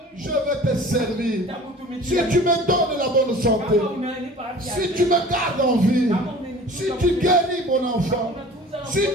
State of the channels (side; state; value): both; normal; correlation 0.44